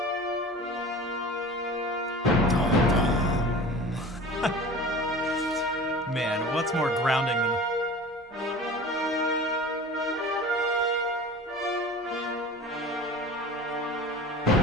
Man, what's more grounding than...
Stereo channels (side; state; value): both; normal; correlation 0.38